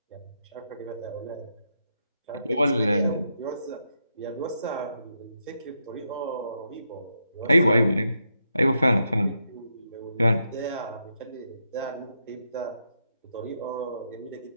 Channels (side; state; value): both; inverted; correlation -0.82